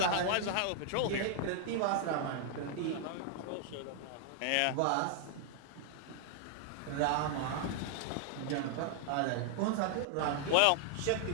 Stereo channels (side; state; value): both; different; correlation 0.00